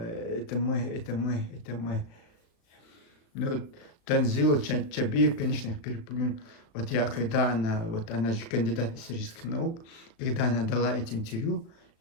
мы, это мы, это мы. Ну, Танзила Чабир, конечно, их переплюнул. Вот я, когда она же кандидат исторических наук, когда она дала эти интервью,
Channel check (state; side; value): late; right; 36 ms